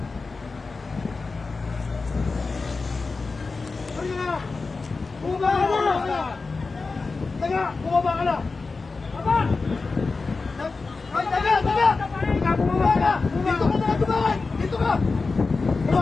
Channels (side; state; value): right; quieter; 4.1 dB